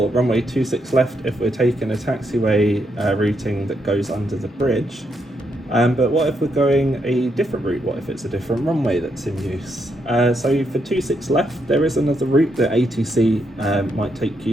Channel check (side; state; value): both; normal; correlation 0.78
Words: runway 26 left if we're taking a taxiway routing that goes under the bridge. But what if we're going a different route? What if it's a different runway that's in use? So for 26 left, there is another route that ATC might take